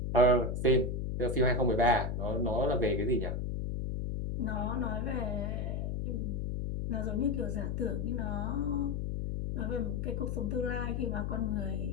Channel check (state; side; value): noise; left; hum, 1 dB below the sound